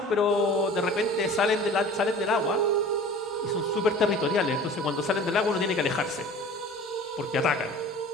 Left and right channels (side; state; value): both; normal; correlation 0.42